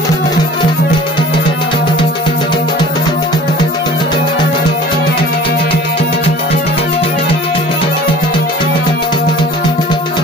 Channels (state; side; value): normal; both; correlation 0.46